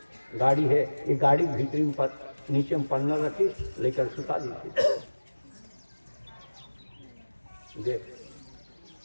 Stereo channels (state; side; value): inverted; both; correlation -1.00